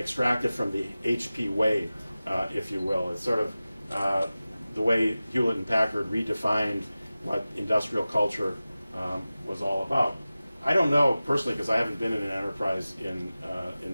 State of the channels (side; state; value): both; inverted; correlation -0.96